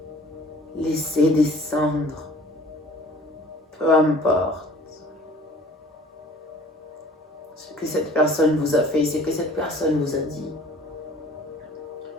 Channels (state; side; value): normal; both; correlation 0.50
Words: Laissez descendre. Peu importe ce que cette personne vous a fait, ce que cette personne vous a dit.